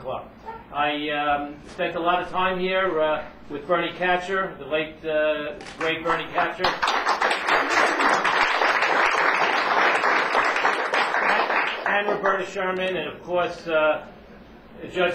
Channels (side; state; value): both; identical; correlation 1.00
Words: Club. I spent a lot of time here with Bernie Katcher, the late, great Bernie Katcher. And Roberta Sherman, and of course Judge